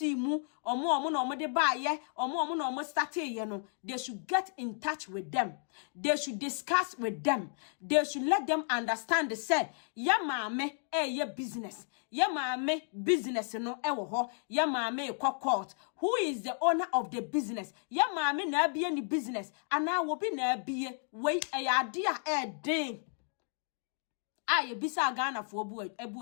mu omo na omo de ba ye omo na omo start ye no they should get in touch with them they should discuss with them they should let them understand say ya maame ye business ya maame business no e wo ho ya maame court who is the owner of the business ya maame na bie ni business ana wo bi na bie wei ade a den aye bisa Ghana fo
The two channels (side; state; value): right; silent; 56 dB below the other